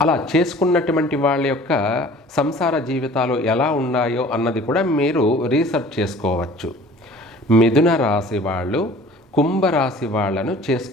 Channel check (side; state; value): both; normal; correlation 0.47